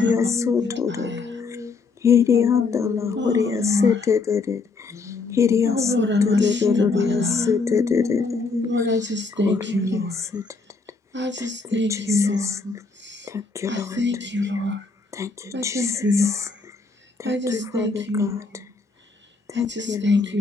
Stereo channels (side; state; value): right; quieter; 4.2 dB